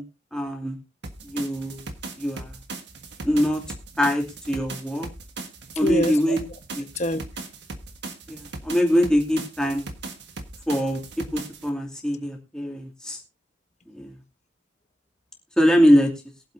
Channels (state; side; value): normal; both; correlation 0.89